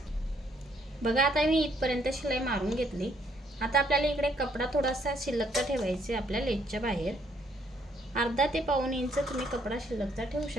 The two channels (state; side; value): normal; both; correlation 0.68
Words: बघा, आता मी इथपर्यंत शिलाई मारून घेतली। आता आपल्याला इकडे कपडा थोडासा शिल्लकचा ठेवायचा आपल्या लेसच्या बाहेर, अर्धा ते पाऊण इंच तुम्ही कपडा शिल्लकचा ठेवू